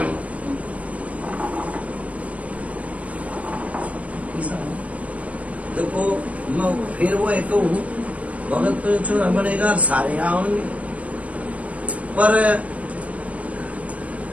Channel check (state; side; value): late; left; 0.066 ms